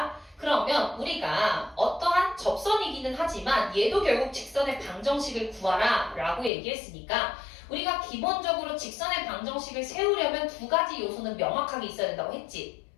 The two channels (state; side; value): drops out; right; at 6.5 s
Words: 그러면 우리가 어떠한 접선이기는 하지만 얘도 결국 직선의 방정식을 구하라 라고 얘기했으니까 우리가 기본적으로 직선의 방정식을 세우려면 두 가지 요소는 명확하게 있어야 된다고 했지.